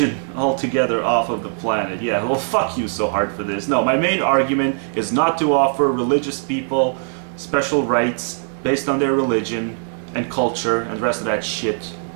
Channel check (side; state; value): left; silent; 63 dB below the other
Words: altogether off of the planet. Yeah, well, fuck you so hard for this. No, my main argument is not to offer religious people special rights based on their religion and culture and the rest of that shit.